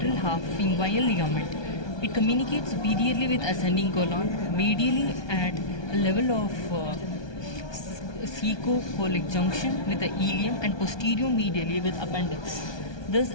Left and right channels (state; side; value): late; right; 1.2 ms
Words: half of inguinal ligament. It communicates superiorly with ascending colon, medially at a level of caecocolic junction with the ileum, and posterior medially with appendix. This